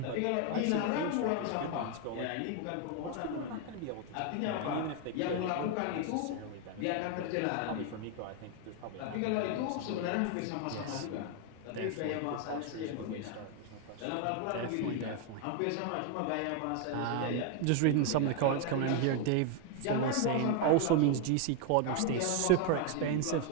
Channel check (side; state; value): both; different; correlation 0.00